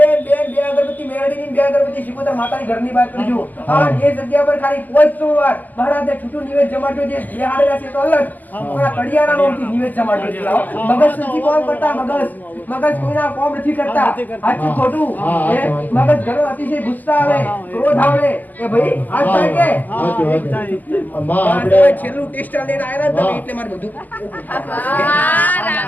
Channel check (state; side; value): late; right; 0.083 ms